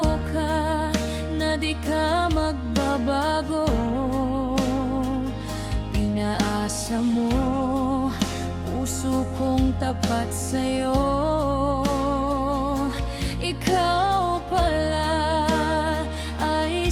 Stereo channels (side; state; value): both; identical; correlation 1.00